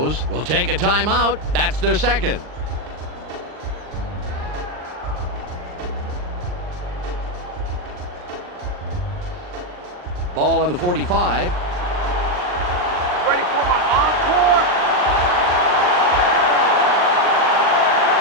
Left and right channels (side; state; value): left; late; 39 ms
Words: will take a timeout. That's their second. Ball on the 45. Ready for my